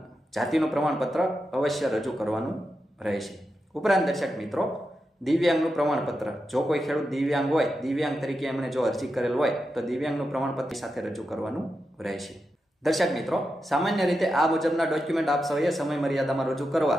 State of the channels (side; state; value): both; normal; correlation 0.88